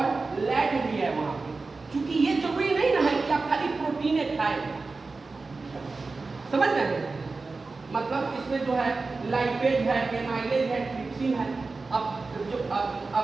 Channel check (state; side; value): quieter; left; 3.9 dB